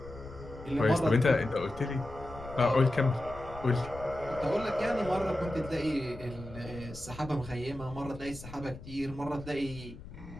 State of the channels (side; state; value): left; noise; rumble, 15 dB below the sound